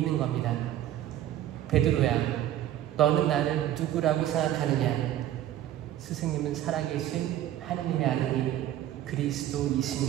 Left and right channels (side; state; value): left; quieter; 12.4 dB